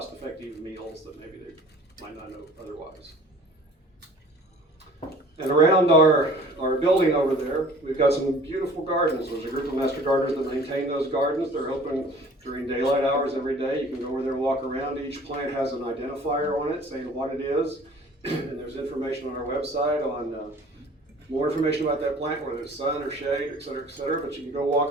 meals that maybe they might not know otherwise. And around our building over there, we've got some beautiful gardens. There's a group of Master Gardeners that maintain those gardens. They're open during daylight hours every day. You can go over there and walk around. Each plant has an identifier on it saying what it is. And there's information on our website on more information about that plant, whether it's sun or shade, et cetera, but you can go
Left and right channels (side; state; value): both; normal; correlation 0.48